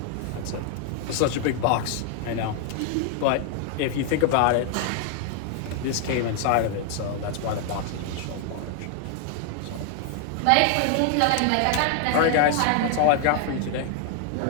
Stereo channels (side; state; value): both; different; correlation 0.00